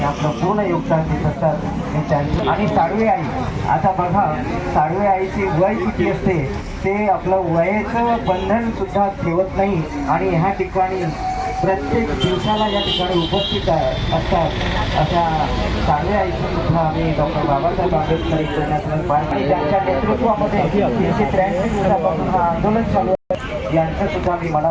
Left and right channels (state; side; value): identical; both; correlation 1.00